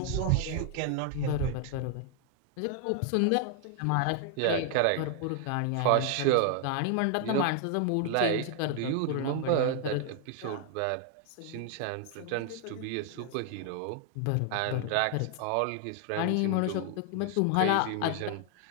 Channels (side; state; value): both; different; correlation 0.00